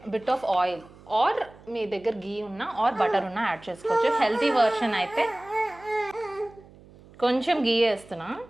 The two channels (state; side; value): noise; right; hum, 23 dB below the sound